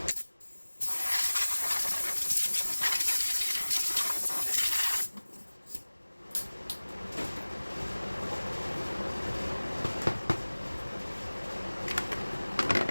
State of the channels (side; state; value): both; inverted; correlation -1.00